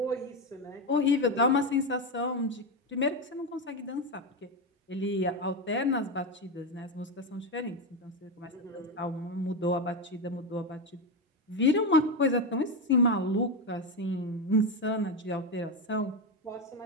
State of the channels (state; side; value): normal; both; correlation 0.12